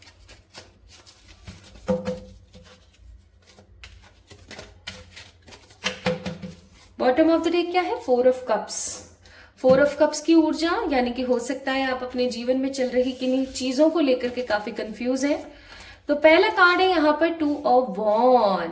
bottom of the deck क्या है? 4 ऑफ कप्स। 4 ऑफ कप्स की ऊर्जा, यानी कि हो सकता है आप अपने जीवन में चल रही किन्हीं चीजों को लेकर के काफी कंफ्यूज हैं। तो पहला कार्ड है यहाँ पर 2 ऑफ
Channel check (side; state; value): both; identical; correlation 1.00